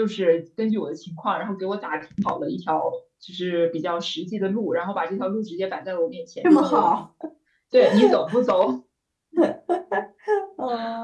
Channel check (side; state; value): both; identical; correlation 1.00